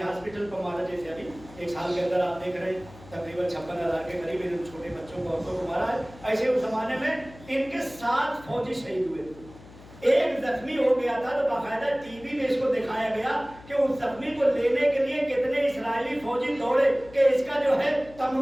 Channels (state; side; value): noise; left; hum, 20 dB below the sound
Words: हॉस्पिटल पर मारा। जैसे अभी 1 साल के अंदर आप देख रहे हैं तकरीबन 56,000 के करीब इन छोटे बच्चों को, औरतों को मारा है। ऐसे उस जमाने में इनके 7 फौजी शहीद हुए थे, ایک زخمی ہو گیا تھا تو باقاعدہ ٹی وی میں اس کو دکھایا گیا کہ اس زخمی کو لینے کے لیے کتنے اسرائیلی فوجی دوڑے کہ اس کا جو ہے